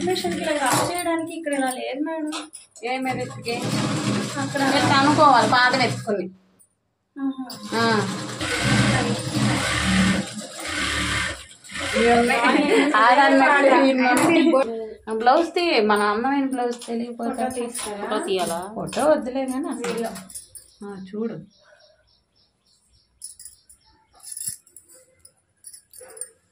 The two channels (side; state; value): both; identical; correlation 1.00